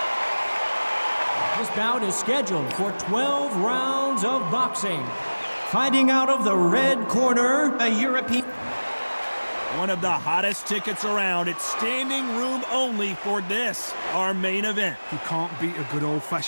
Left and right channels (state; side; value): inverted; both; correlation -1.00